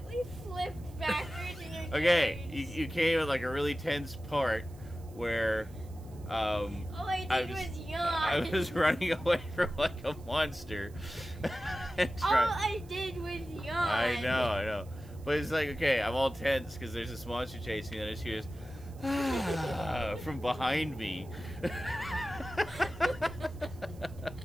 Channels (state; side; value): noise; right; hiss, 27 dB below the sound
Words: flipped backwards in your Okay, carriage. you came at like a really tense part where All I did was yawn. I was running away from like a monster. And All I did was yawn. I know. But it's like, okay, I'm all tense because there's this monster chasing me, and I just hear this from behind me.